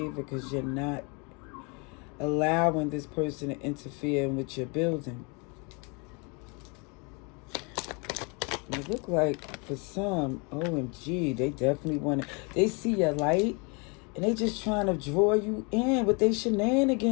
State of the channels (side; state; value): right; quieter; 32.1 dB